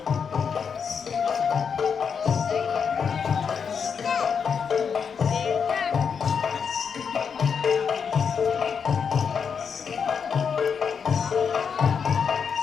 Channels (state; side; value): quieter; right; 6.5 dB